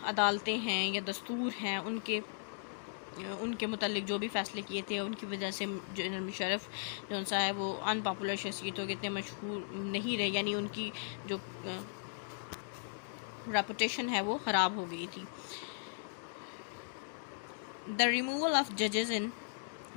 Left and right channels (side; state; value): right; silent; digital silence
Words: عدالتیں ہیں یا دستور ہیں ان کے متعلق جو بھی فیصلے کیے تھے، ان کی وجہ سے جنرل مشرف جو سا ہے وہ ان پاپولر شخصیت ہو گئے تھے، مشہور نہیں رہے، یعنی ان کی جو ریپوٹیشن ہے وہ خراب ہو گئی تھی. The removal of judges in